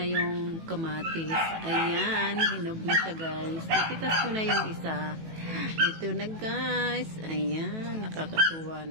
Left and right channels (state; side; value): late; left; 18 ms